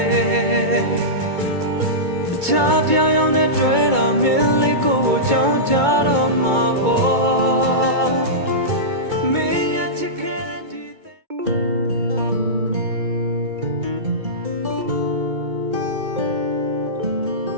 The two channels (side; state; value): left; late; 2.2 ms